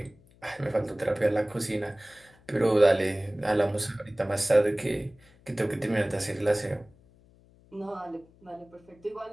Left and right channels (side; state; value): left; noise; hum, 28 dB below the sound